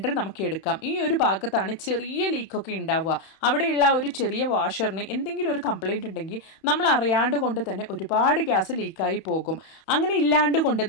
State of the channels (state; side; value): late; right; 31 ms